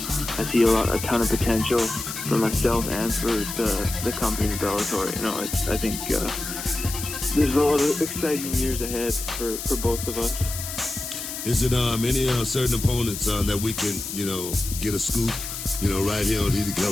I see a ton of potential for myself and for the company Bellator. You know, I think there's a lot of exciting years ahead for both of us. Is it any certain opponents that we can, you know, get a scoop, you know, right here on Heated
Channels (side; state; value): left; noise; hiss, 7 dB below the sound